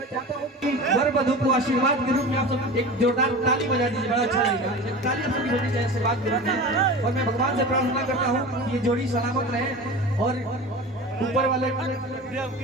चाहता हूँ कि वर वधू को आशीर्वाद के रूप में आप सब एक जोरदार ताली बजा दीजिए, बड़ा अच्छा लगेगा। ताली आप सभी बजनी चाहिए आशीर्वाद के रूप में। और मैं भगवान से प्रार्थना करता हूँ कि ये जोड़ी सलामत रहे और ऊपर वाले का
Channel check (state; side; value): normal; both; correlation 0.33